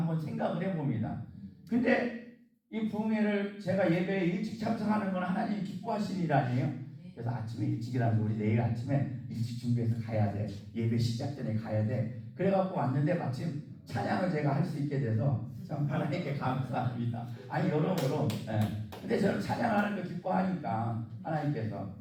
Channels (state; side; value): identical; both; correlation 1.00